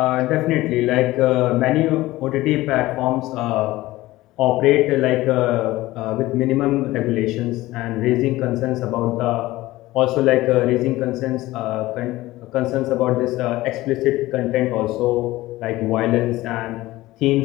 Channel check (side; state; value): right; quieter; 17.8 dB